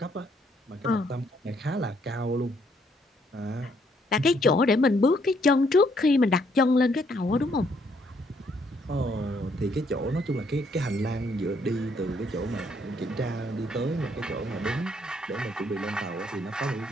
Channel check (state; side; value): normal; both; correlation 0.69